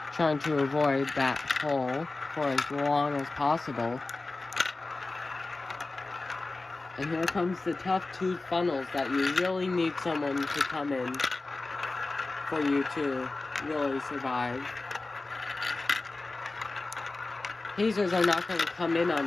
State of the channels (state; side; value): quieter; right; 3.3 dB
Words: Trying to avoid that hole for as long as possible. And here comes the tough 2 funnels that you really need someone to come in for you to really survive. Hazers are not going to come in